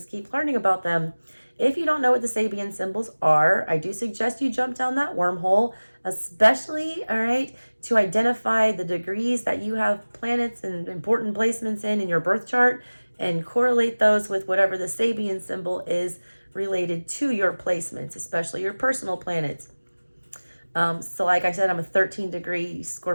keep learning about them. If you don't know what the Sabian symbols are, I do suggest you jump down that wormhole, especially, all right, to identify the degrees that you have planets and important placements in your birth chart, and correlate those with whatever the Sabian symbol is related to your placements, especially your personal planets. So like I said, I'm a 13-degree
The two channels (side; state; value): both; inverted; correlation -1.00